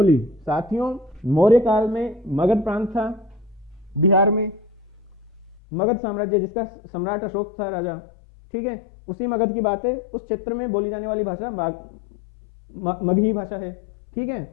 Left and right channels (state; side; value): drops out; right; at 5.6 s